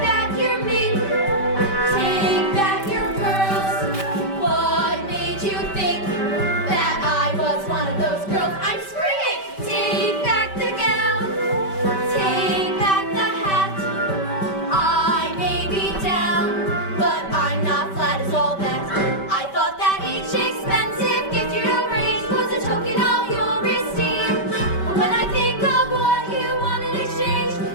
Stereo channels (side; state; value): right; late; 5.2 ms